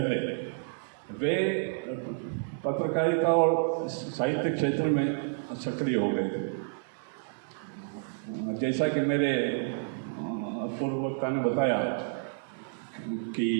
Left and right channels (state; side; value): silent; left; digital silence